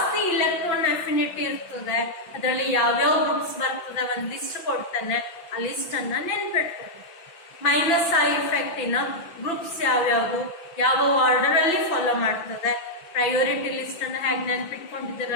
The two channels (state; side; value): late; right; 5.9 ms